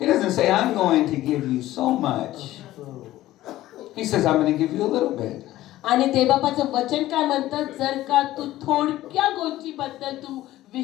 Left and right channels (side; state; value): right; quieter; 15.3 dB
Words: doesn't say, I'm going to give you so much. He says, I'm going to give you a little bit. आणि देवबापाचं वचन काय म्हणतं जर का तू थोडक्या गोष्टीबद्दल तू